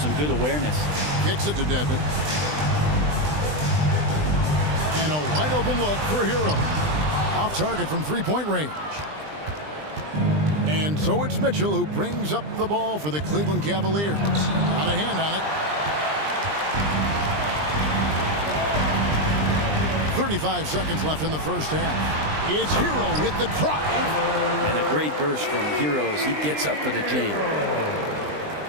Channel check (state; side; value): late; left; 20 ms